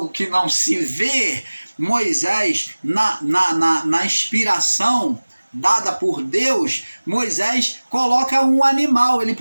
que não se vê. Moisés, na inspiração dada por Deus, Moisés coloca um animal. Ele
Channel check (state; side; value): inverted; both; correlation -1.00